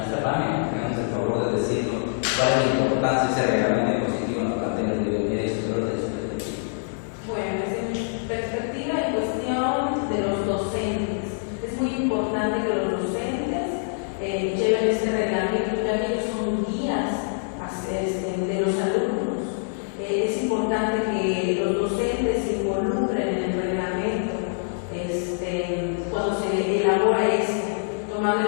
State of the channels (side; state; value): right; silent; 57 dB below the other